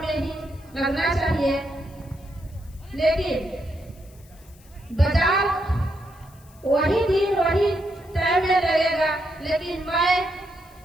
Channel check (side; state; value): left; noise; hiss, 27 dB below the sound